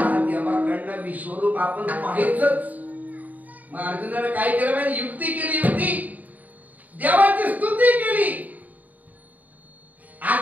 देवाकडनं विश्वरूप आपण पाहायचंच. मग अर्जुनाने काय केलं माहिती, युक्ती केली. युक्ती देवाची स्तुती केली.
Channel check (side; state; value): left; late; 0.077 ms